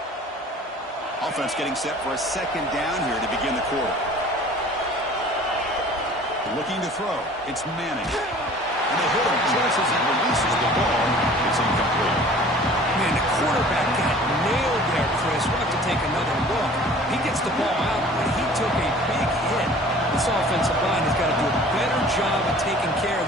Offense getting set for a second down here to begin the quarter. Looking to throw. It's Manning. And they hit him just as he releases the ball. It's incomplete. Man, the quarterback got nailed there, Chris. We'll have to take another look. He gets the ball out, but he took a big hit. This offensive line has got to do a better job of taking care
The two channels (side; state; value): both; normal; correlation 0.48